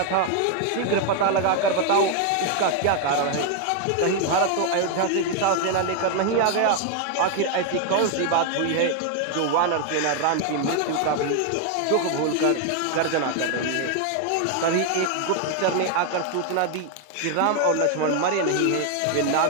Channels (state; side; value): different; both; correlation 0.01